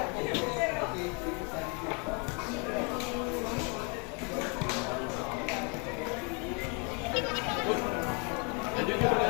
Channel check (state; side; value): quieter; right; 34.0 dB